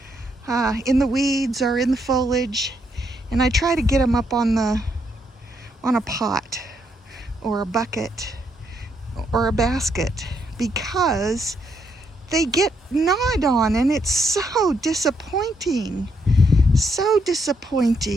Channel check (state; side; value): normal; both; correlation 0.75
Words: in the weeds or in the foliage, and I try to get them up on a pot or a bucket or a basket, because they get gnawed on, and it's so disappointing. So